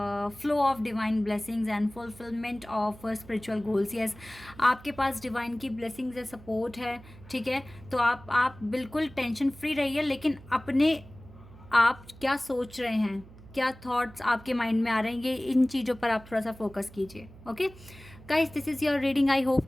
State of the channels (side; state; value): right; noise; hum, 20 dB below the sound